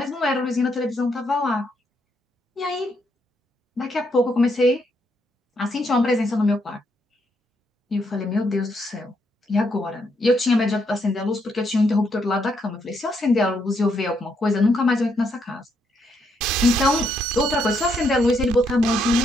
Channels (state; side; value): normal; both; correlation 0.76